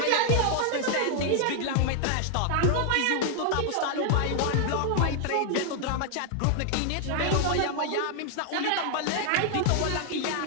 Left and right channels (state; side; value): different; both; correlation 0.00